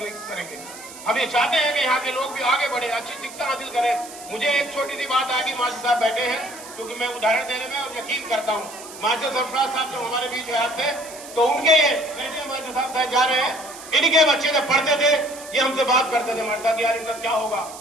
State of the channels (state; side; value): noise; right; hiss, 15 dB below the sound